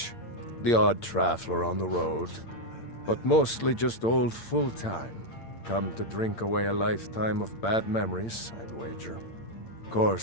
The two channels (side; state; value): right; late; 8.8 ms